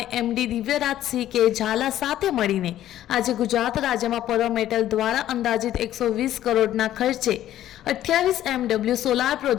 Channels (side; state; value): right; quieter; 12.6 dB